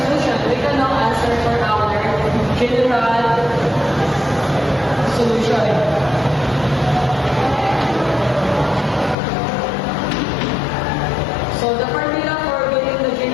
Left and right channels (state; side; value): drops out; right; at 9.2 s